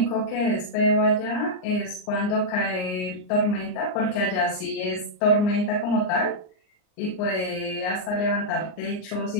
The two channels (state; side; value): late; right; 39 ms